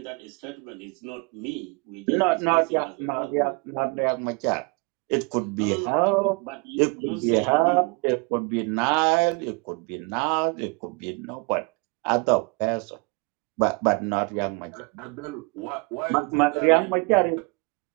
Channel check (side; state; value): left; quieter; 30.6 dB